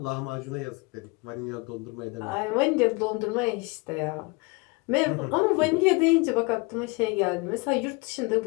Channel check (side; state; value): right; quieter; 27.7 dB